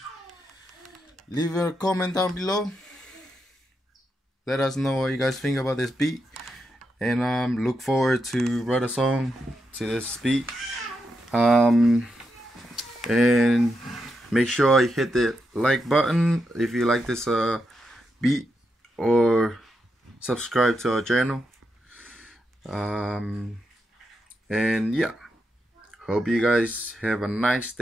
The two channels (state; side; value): normal; both; correlation 0.84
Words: leave a comment down below. Let us know what you guys think about this beat. And look forward to write a song to this beat. And make sure you hit the like button if you like this beat, or subscribe to our channel. And yeah, hope you guys have a nice